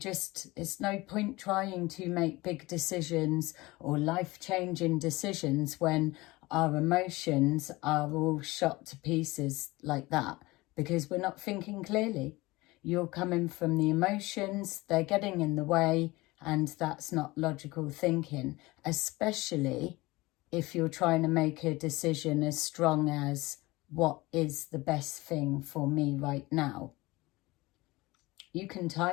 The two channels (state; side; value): quieter; right; 21.1 dB